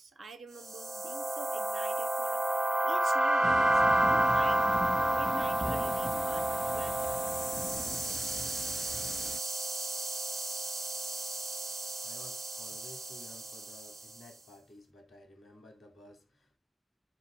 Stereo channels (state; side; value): normal; both; correlation 0.94